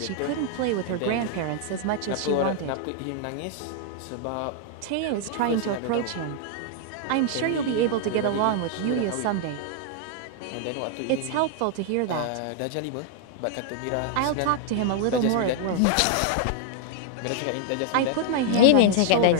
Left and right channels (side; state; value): both; different; correlation 0.00